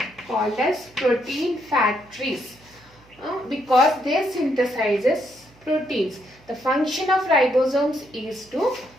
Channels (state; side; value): noise; right; hum, 28 dB below the sound